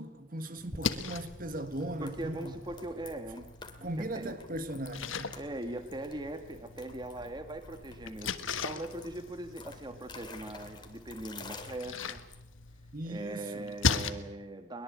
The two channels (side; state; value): both; normal; correlation 0.44